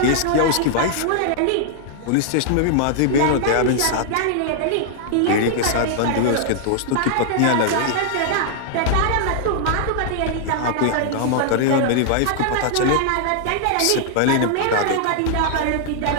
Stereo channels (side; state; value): both; different; correlation -0.01